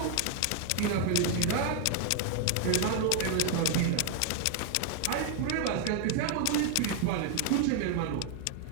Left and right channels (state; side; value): different; both; correlation 0.00